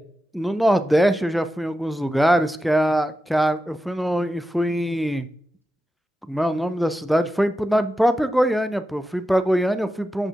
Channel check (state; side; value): normal; both; correlation 0.91